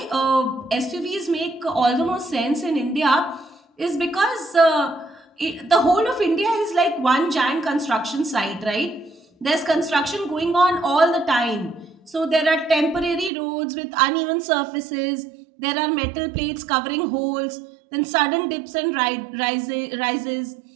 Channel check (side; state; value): left; drops out; at 13.3 s